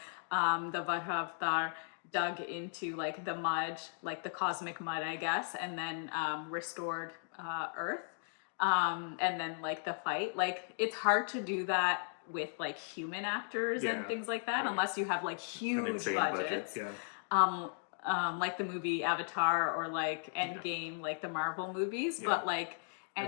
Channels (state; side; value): silent; right; digital silence